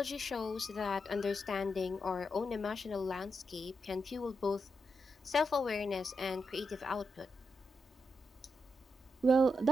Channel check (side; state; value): both; normal; correlation 0.85